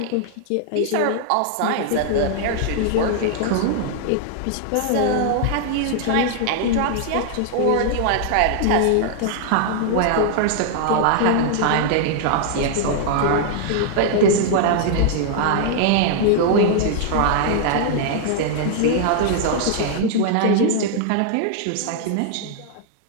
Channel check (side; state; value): both; different; correlation -0.01